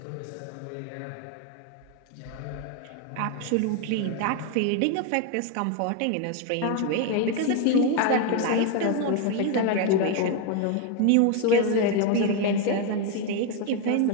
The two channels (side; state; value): both; different; correlation 0.01